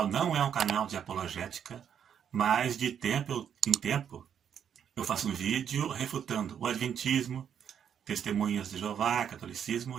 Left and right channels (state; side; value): quieter; left; 8.5 dB